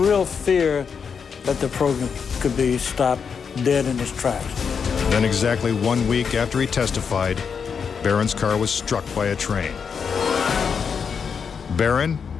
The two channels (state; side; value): quieter; right; 6.3 dB